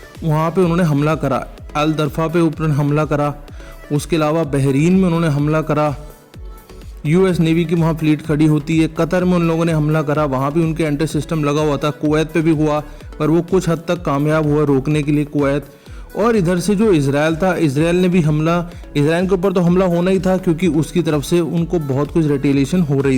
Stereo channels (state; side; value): identical; both; correlation 1.00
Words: वहाँ पे उन्होंने हमला करा, अल दरफा पे ऊपर हमला करा, उसके अलावा बहरीन में उन्होंने हमला करा, US नेवी की वहाँ फ्लीट खड़ी होती है, कतर में उन लोगों ने हमला करा, वहाँ भी उनके एंटी सिस्टम लगा हुआ था, कुवैत पे भी हुआ पर वो कुछ हद तक कामयाब हुआ रोकने के लिए कुवैत। और इधर से जो इजराइल था, इजराइल ने भी हमला, इजराइल के ऊपर तो हमला होना ही था क्योंकि उसकी तरफ से उनको बहुत कुछ रिटेलिएशन हो